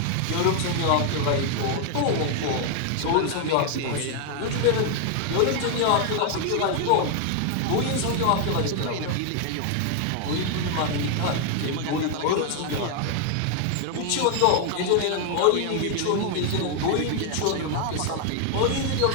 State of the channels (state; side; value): different; both; correlation 0.00